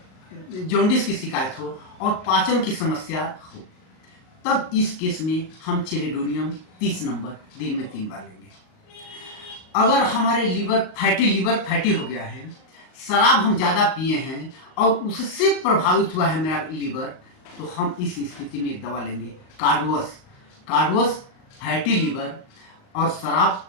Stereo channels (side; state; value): right; late; 38 ms